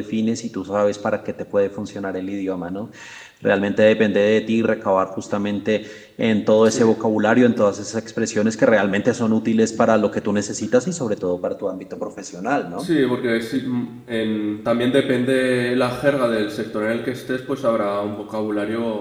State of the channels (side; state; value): both; identical; correlation 1.00